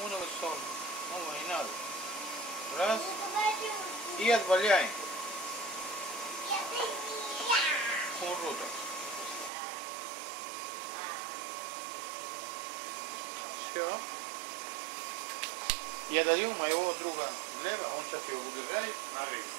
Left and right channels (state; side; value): drops out; left; at 9.5 s